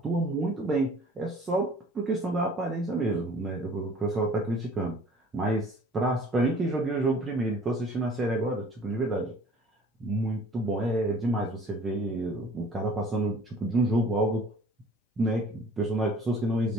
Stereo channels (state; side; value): normal; both; correlation 0.50